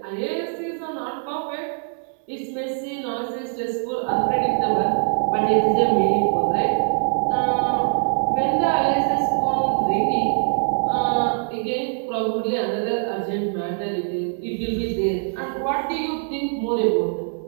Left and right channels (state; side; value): silent; left; digital silence